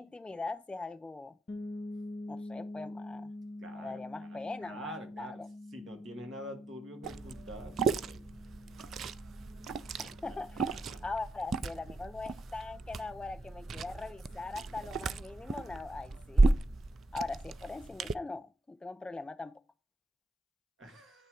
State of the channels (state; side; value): normal; both; correlation 0.84